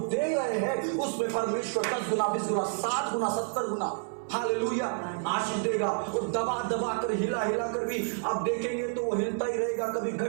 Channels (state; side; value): silent; left; 58 dB below the other